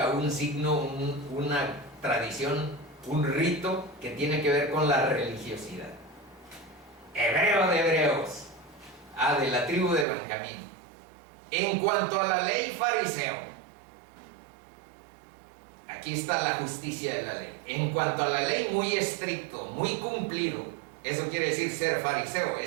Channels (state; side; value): drops out; left; at 10.1 s